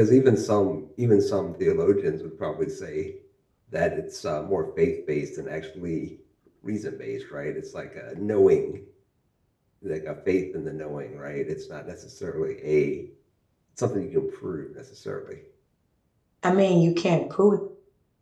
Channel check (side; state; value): both; identical; correlation 1.00